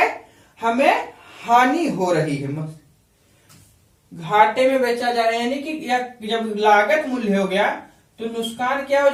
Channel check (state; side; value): identical; both; correlation 1.00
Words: हमें हानि हो रही है, घाटे में बेचा जा रहा है। यानी कि जब लागत मूल्य हो गया तो नुकसान क्या हो